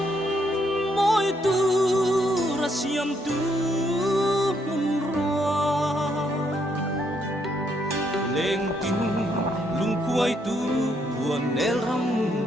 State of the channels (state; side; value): normal; both; correlation 0.73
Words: môi tu ra siam tu mun roa lên tin lung quay tu buồn nel ram